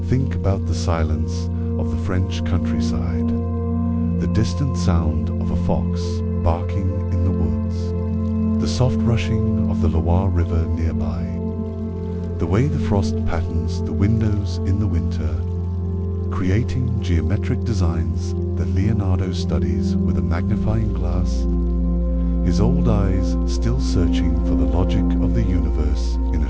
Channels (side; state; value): both; identical; correlation 1.00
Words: Think about the silence of the French countryside, the distant sound of a fox barking in the woods, the soft rushing of the Loire River nearby, The way the frost patterns the windows in the winter, creating geometric designs that Leonardo studies with a magnifying glass, his old eyes still searching for the logic of the universe in a